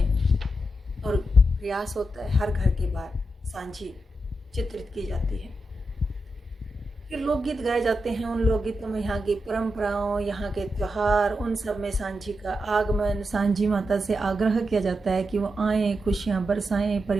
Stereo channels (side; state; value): both; normal; correlation 0.87